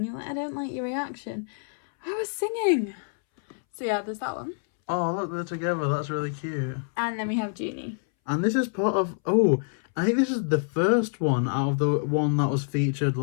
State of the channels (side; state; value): right; silent; 60 dB below the other